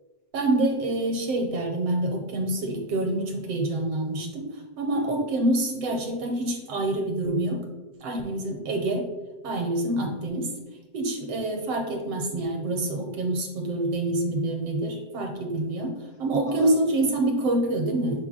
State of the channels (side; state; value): left; late; 7.8 ms